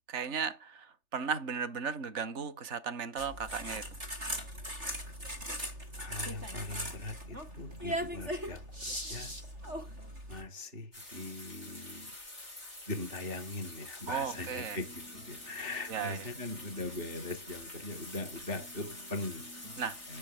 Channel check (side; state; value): left; late; 3.4 ms